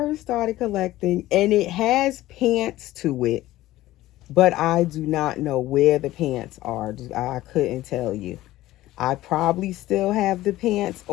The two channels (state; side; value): quieter; right; 16.0 dB